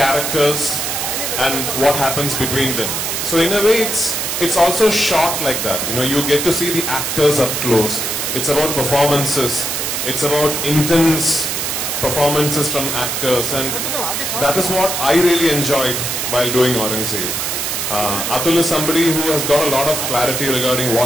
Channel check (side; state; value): right; noise; hiss, 2 dB below the sound